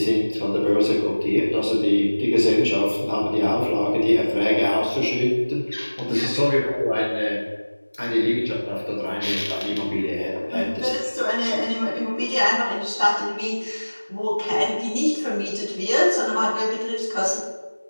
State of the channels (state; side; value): inverted; both; correlation -1.00